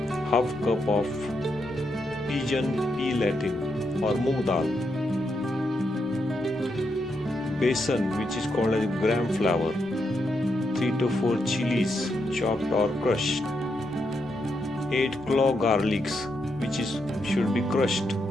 half cup of pigeon pea latin or moong dal, besan which is called as gram flour, 3 to 4 chilies chopped or crushed, 8 clove garlics which should be crushed,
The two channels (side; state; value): both; normal; correlation 0.81